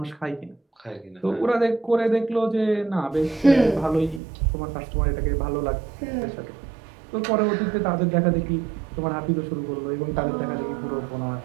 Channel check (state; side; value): drops out; left; at 4.2 s